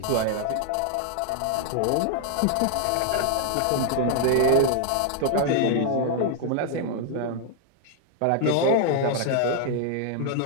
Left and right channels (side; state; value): both; different; correlation 0.00